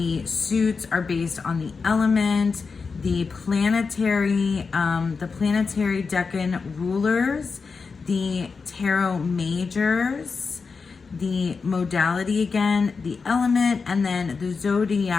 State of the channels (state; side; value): quieter; right; 4.9 dB